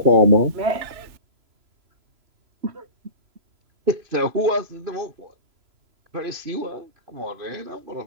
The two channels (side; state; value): left; late; 3.0 ms